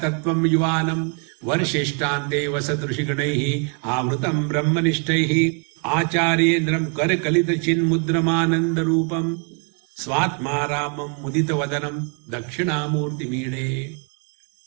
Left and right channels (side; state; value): left; quieter; 39.2 dB